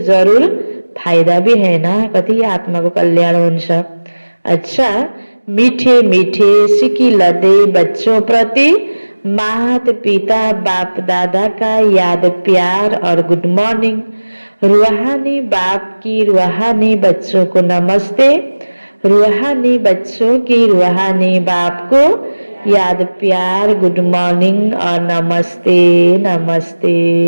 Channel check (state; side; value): inverted; both; correlation -1.00